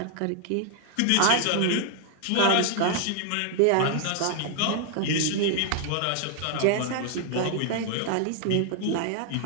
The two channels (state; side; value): different; both; correlation 0.00